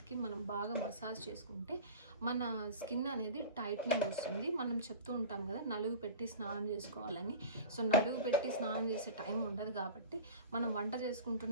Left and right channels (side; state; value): both; inverted; correlation -0.34